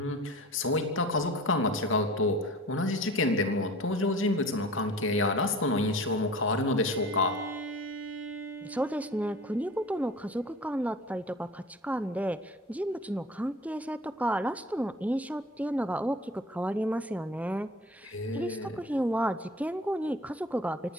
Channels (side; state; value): both; normal; correlation 0.42